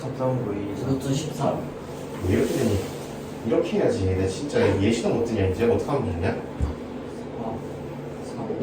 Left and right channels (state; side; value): identical; both; correlation 1.00